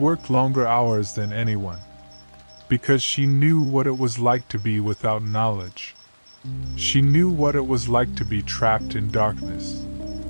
longer hours than anyone. Because she knew what it was like to be without knowledge. She knew what it was like to be trapped in darkness.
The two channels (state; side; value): inverted; both; correlation -1.00